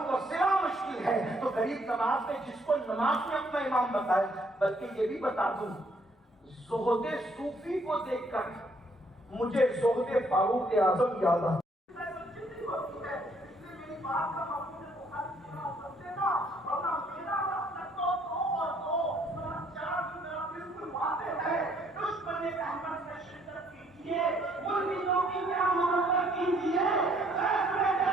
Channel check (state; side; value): normal; both; correlation 0.66